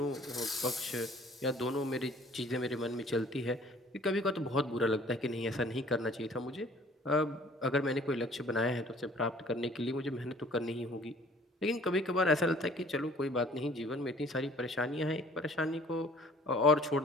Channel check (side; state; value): both; normal; correlation 0.53